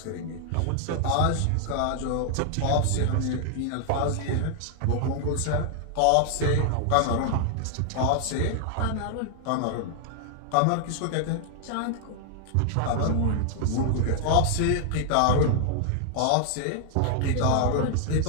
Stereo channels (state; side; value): different; both; correlation 0.00